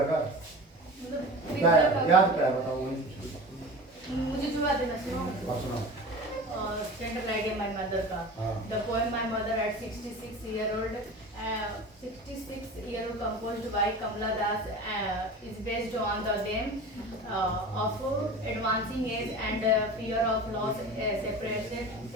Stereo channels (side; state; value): both; normal; correlation 0.34